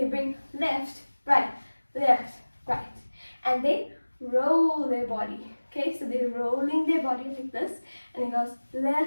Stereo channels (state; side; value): inverted; both; correlation -1.00